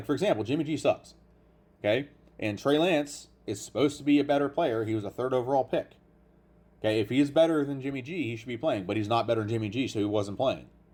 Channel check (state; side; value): identical; both; correlation 1.00